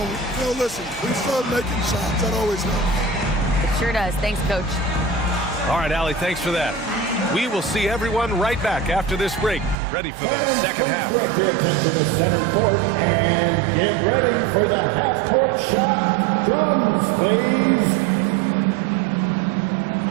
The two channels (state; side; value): drops out; left; at 9.8 s